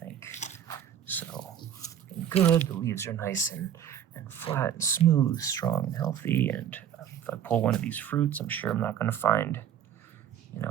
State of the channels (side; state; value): left; quieter; 9.6 dB